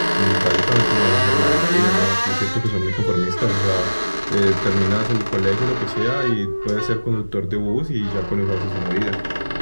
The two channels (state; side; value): inverted; both; correlation -1.00